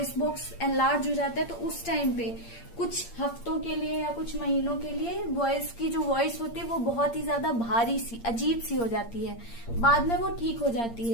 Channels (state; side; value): late; right; 8.7 ms